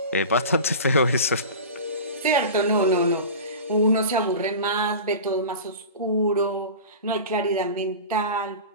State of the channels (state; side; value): inverted; both; correlation -0.33